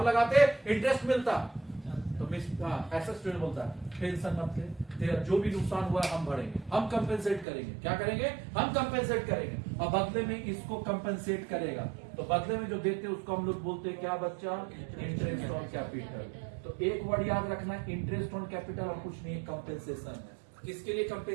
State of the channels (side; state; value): left; drops out; at 7.5 s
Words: लगाते इंटरेस्ट मिलता तो एसएस ट्रेड बोलता है टेंशन मत ले, तेरा जो भी नुकसान हुआ हम भरेंगे, हम कंपेंसेट करेंगे। क्या करेंगे, हम कंपेंसेट करेंगे। और बदले में इसको कंपेंसेट करेगा, तो बदले में जो देते हैं उसको हम लोग बोलते हैं क्या बच्चा, इंटरेस्ट ऑन कैपिटल। तो एक वर्ड याद रखना, इंटरेस्ट ऑन कैपिटल और कुछ नहीं, कंपेंसेशन है। किसके लिए